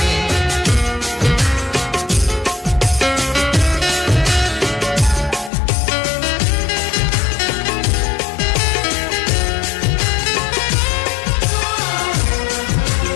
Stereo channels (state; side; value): drops out; right; at 5.5 s